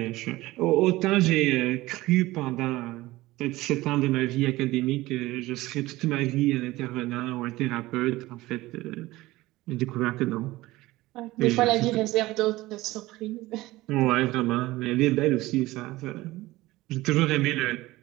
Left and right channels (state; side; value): quieter; left; 18.5 dB